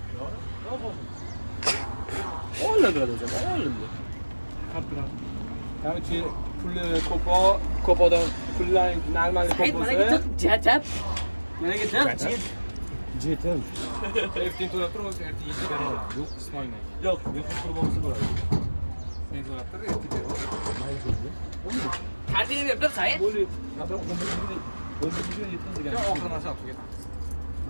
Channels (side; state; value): both; inverted; correlation -1.00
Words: Oladi o'zi, oladi. Qancha puli ko'p odam pullar normal ko'p Hayt, bo'lsa, mana git, jajab. Mana git, jetim. Ertin to'lab tur, o'zi ertin yetib beraman. Yo'q, qismayman. Yo'q, men qurib olsa bo'ladi. Sen to'lab tur, ertin beraman. Kartini berib tur, Said. Bo'ldi. Qadar 10 mingga yetkazgan. Yo'q, oxiri narsa olib ketamiz.